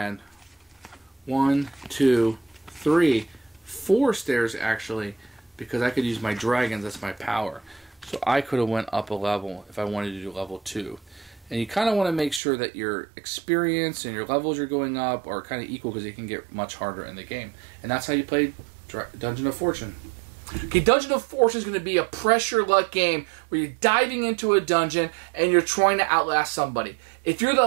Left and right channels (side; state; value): left; drops out; at 12.4 s